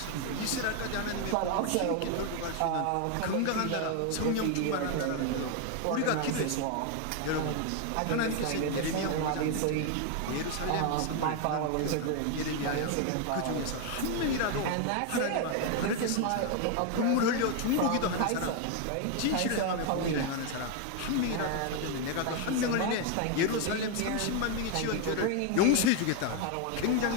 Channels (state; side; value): different; both; correlation 0.01